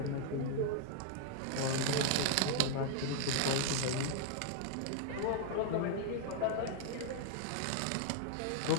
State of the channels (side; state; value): both; different; correlation 0.00